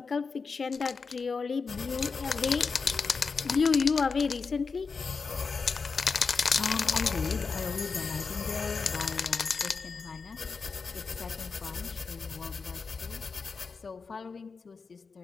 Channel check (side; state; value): right; quieter; 4.9 dB